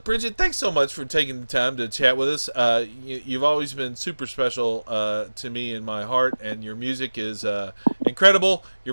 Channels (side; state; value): both; inverted; correlation -1.00